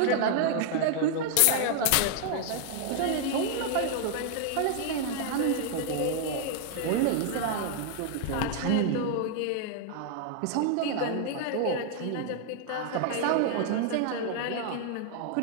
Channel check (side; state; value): both; different; correlation 0.00